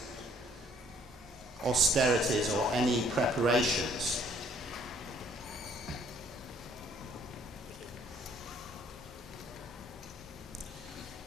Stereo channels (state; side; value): normal; both; correlation 0.62